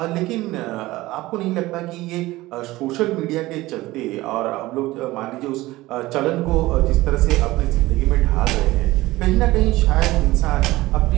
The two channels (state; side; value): quieter; left; 18.4 dB